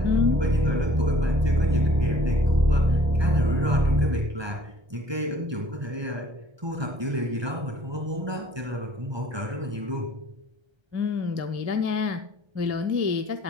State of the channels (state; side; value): late; left; 1.2 ms